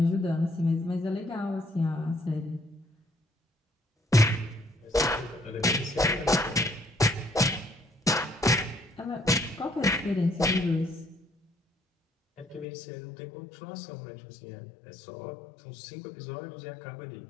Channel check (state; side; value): drops out; right; at 12.7 s